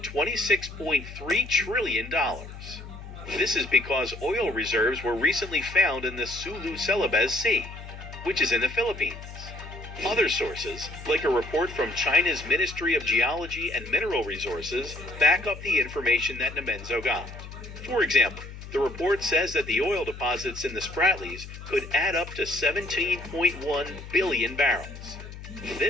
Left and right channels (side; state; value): left; noise; hum, 13 dB below the sound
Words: trillion. This is because oil reserves were recently found in the Sulu Celebes Sea, which is in the Philippines. Other sources, like a report from China's Ministry of Geology and Mineral Resources, back up the information that Dimenzo got. For example, the report says that the oil deposits in the Spratlys could add up to 17.1 billion barrels.